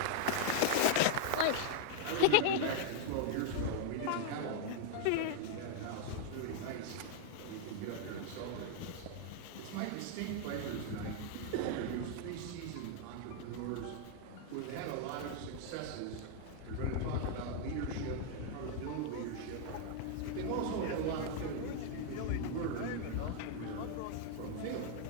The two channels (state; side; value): different; both; correlation 0.00